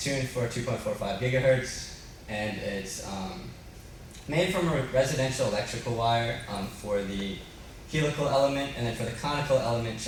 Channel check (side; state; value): both; identical; correlation 1.00